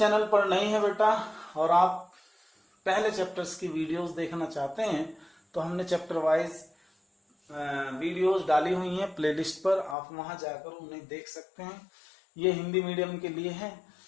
पर नए हैं बेटा और आप पहले चैप्टर्स की वीडियोस देखना चाहते हैं तो हमने चैप्टर वाइज वीडियोस डाली हुई हैं प्लेलिस्ट पर, आप वहां जाकर उन्हें देख सकते हैं। ये हिंदी मीडियम के लिए है,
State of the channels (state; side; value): drops out; right; at 10.0 s